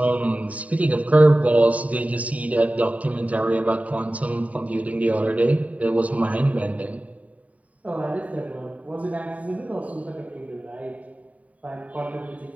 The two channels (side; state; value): left; late; 0.069 ms